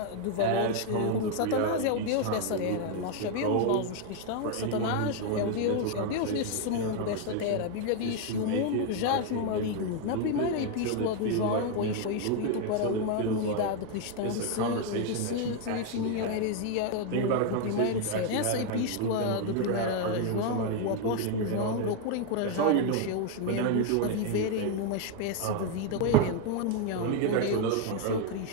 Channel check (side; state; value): both; different; correlation 0.01